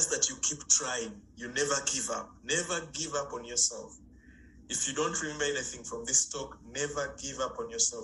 that you keep trying. You never give up. Never give up on yourself. If you don't remember anything from this talk, never give up on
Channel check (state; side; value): identical; both; correlation 1.00